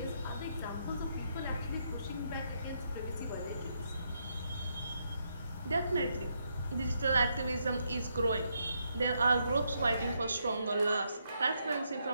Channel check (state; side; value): inverted; both; correlation -0.78